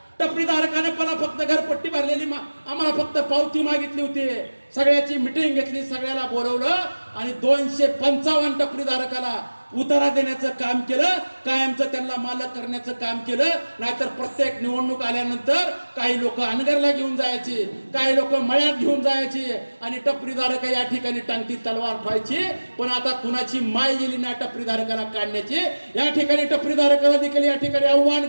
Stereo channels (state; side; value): inverted; both; correlation -1.00